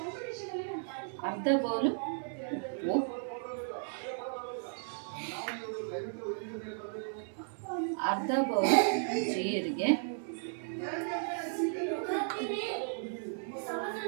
ಅರ್ಧ ಬೌಲು ಉಪ್ಪು, ಅರ್ಧ ಬೌಲು ಜೀರಿಗೆ,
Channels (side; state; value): left; silent; digital silence